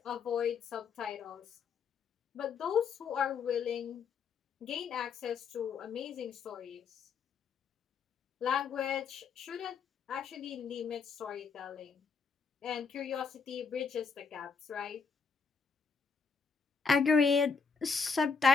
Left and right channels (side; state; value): right; quieter; 5.4 dB